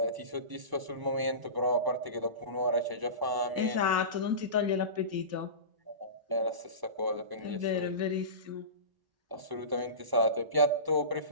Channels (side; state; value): left; late; 1.0 ms